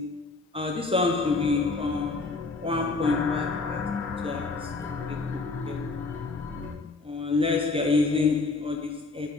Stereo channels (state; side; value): quieter; right; 3.8 dB